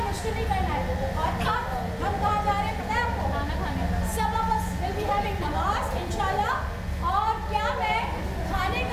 मुश्किल नहीं करना है। और अब हम कहाँ जा रहे हैं पता है आपको? खाना खाने। सब of us will be having नमाज इंशाल्लाह। और क्या मैं खाने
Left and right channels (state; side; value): identical; both; correlation 1.00